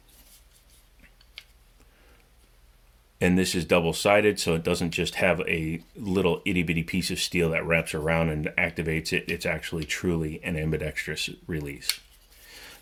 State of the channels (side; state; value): both; identical; correlation 1.00